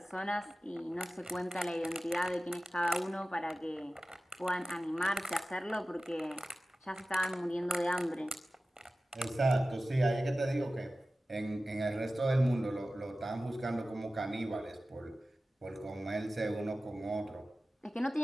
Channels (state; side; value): normal; both; correlation 0.96